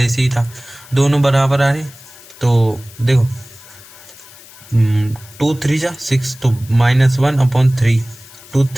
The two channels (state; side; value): noise; left; hiss, 21 dB below the sound